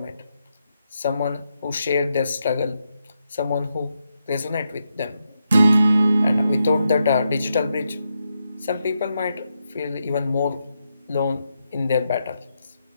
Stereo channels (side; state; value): both; inverted; correlation -0.84